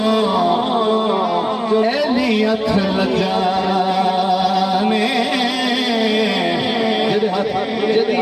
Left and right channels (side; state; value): both; identical; correlation 1.00